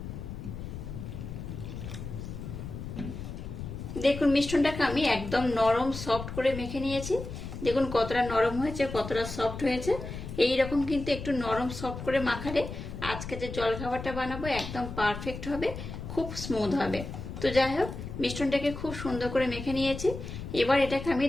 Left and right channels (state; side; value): noise; left; rumble, 8 dB below the sound